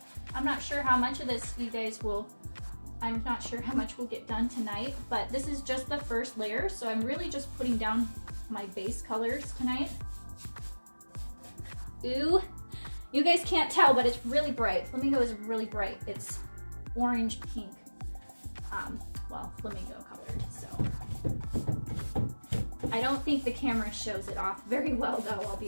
I'm not sure how much of this I'm not sure how much we'll get done tonight, but this is just the first layer, so I'm really just putting down my base colors tonight. Ooh, you guys can't tell, but it's really bright. Flamingo is really bright. It's orange pink. Well, flamingo colored, so. I don't think the camera shows it off very well though, I'll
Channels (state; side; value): inverted; both; correlation -1.00